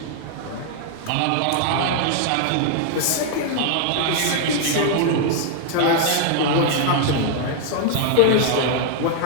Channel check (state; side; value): different; both; correlation 0.00